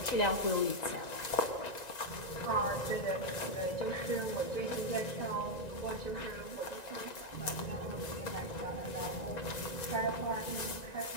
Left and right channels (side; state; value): right; late; 1.9 ms